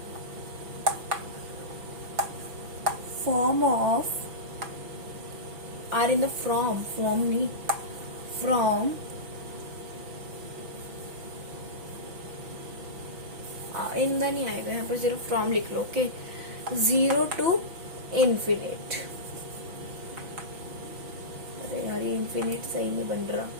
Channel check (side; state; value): left; late; 6.0 ms